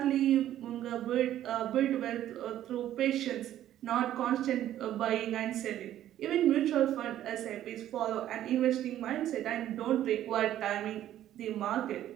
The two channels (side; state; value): left; quieter; 12.2 dB